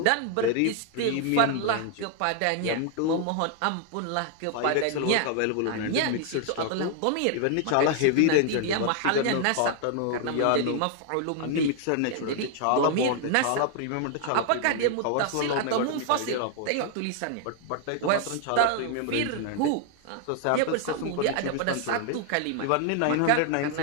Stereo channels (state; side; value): different; both; correlation 0.00